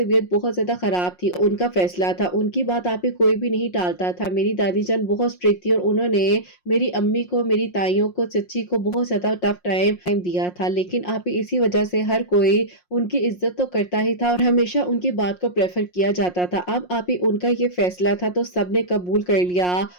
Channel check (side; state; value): right; late; 5.6 ms